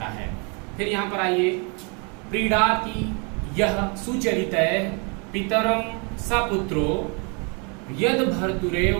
है। फिर यहाँ पर आइए, प्रीडाति यह सुचरितः पितरम सपुत्रो यद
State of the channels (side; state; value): left; quieter; 34.3 dB